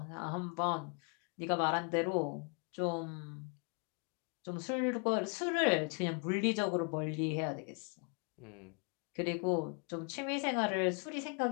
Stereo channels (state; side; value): quieter; right; 36.1 dB